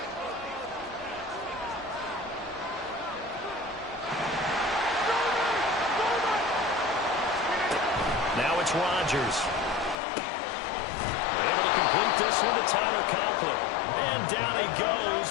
Now it's Rodgers. Able to complete this one to Tyler Conklin. And down he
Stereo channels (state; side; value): drops out; right; at 10.0 s